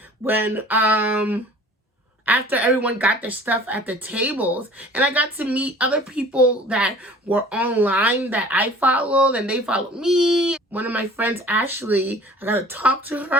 when after everyone got their stuff at the tables, and I got to meet other people that were online that I followed, and they followed me. One of my friends, Ashley, I got to talk to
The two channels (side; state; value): both; normal; correlation 0.47